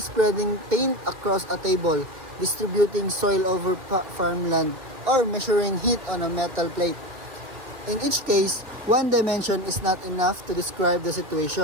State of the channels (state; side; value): late; left; 2.5 ms